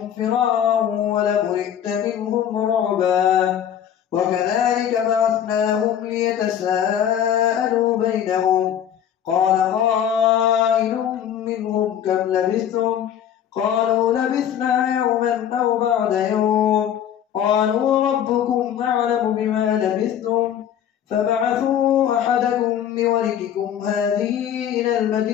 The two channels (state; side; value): quieter; right; 9.6 dB